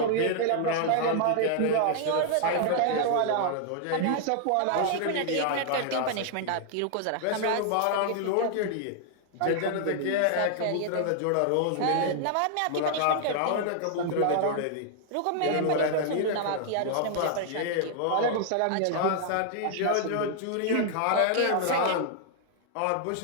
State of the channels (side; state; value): both; different; correlation 0.00